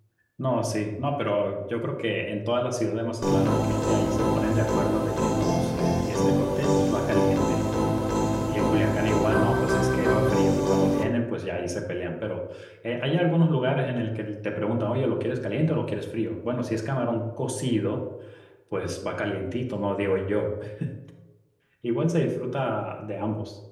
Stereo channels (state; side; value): identical; both; correlation 1.00